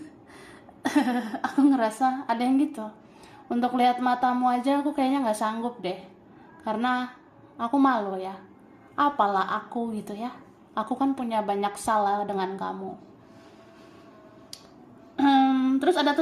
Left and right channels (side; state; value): both; identical; correlation 1.00